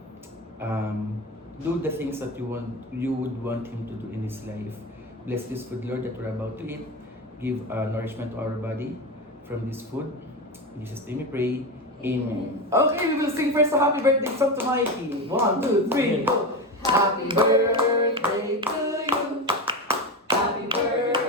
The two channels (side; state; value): both; normal; correlation 0.20